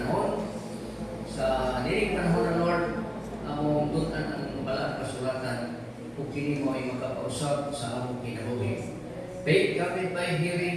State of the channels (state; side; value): identical; both; correlation 1.00